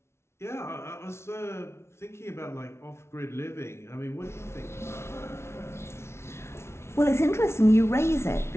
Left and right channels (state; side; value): late; right; 0.13 ms